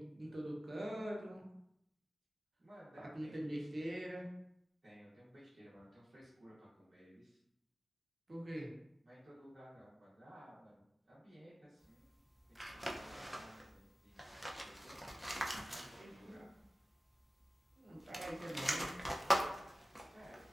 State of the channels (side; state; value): both; normal; correlation 0.96